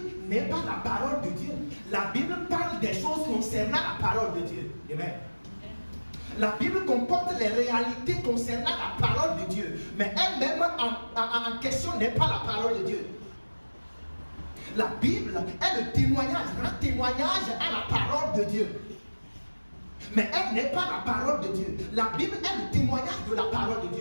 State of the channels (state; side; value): inverted; both; correlation -1.00